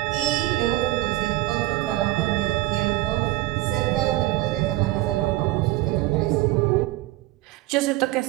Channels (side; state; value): left; quieter; 17.9 dB